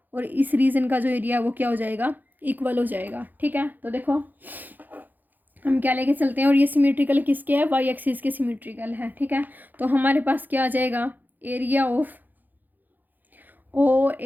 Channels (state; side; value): late; left; 0.085 ms